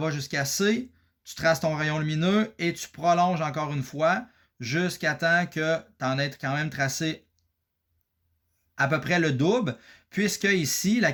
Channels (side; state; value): both; identical; correlation 1.00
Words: jusqu'à C, tu traces ton rayon lumineux et tu prolonges encore une fois jusqu'à temps que tu en aies quand même tracé à peu près le double, puisque ici, la